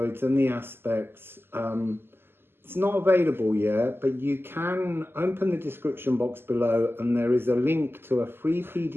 and the aspects. It's not available yet, but you can open the description box below and there is a link to a free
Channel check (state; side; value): late; left; 0.11 ms